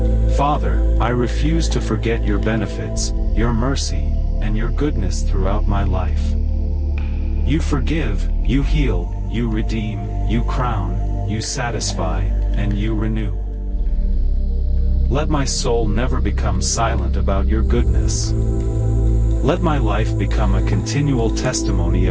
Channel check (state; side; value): identical; both; correlation 1.00